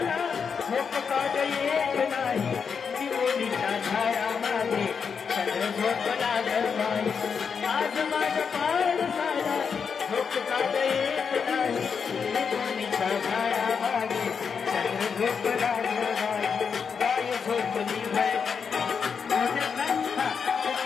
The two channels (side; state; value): right; quieter; 6.2 dB